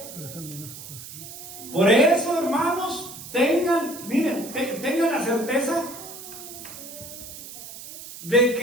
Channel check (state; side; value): noise; right; hiss, 13 dB below the sound